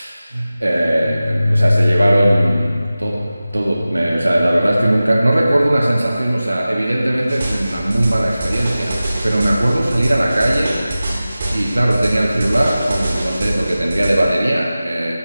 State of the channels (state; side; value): inverted; both; correlation -0.96